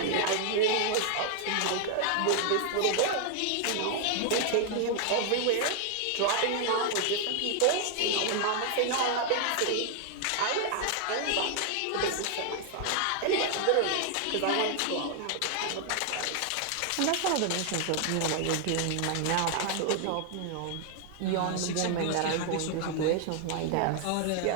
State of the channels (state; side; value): different; both; correlation 0.00